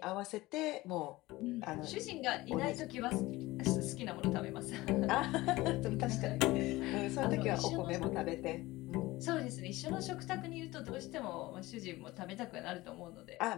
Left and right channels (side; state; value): right; quieter; 19.4 dB